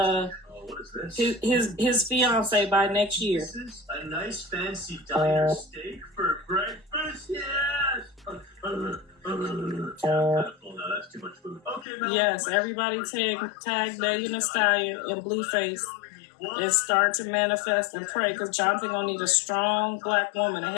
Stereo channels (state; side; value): drops out; right; at 11.9 s